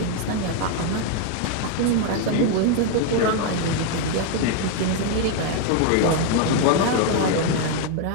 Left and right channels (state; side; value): different; both; correlation 0.01